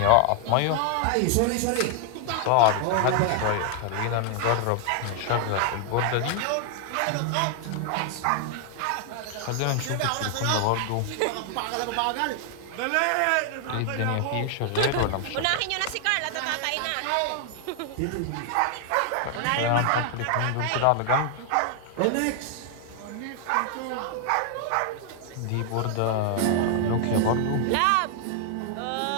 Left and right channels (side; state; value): both; different; correlation 0.00